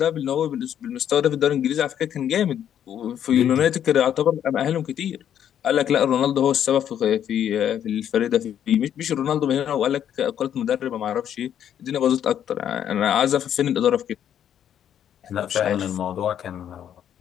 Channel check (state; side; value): quieter; right; 9.8 dB